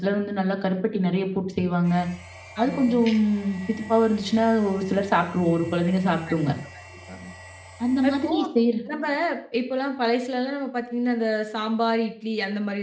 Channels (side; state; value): both; identical; correlation 1.00